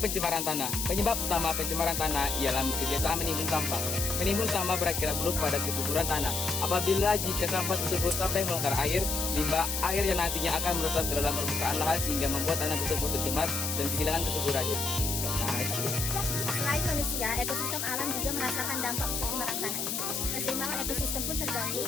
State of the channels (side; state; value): left; noise; hiss, 2 dB below the sound